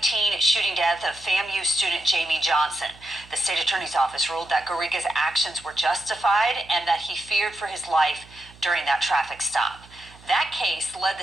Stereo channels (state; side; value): noise; right; hum, 23 dB below the sound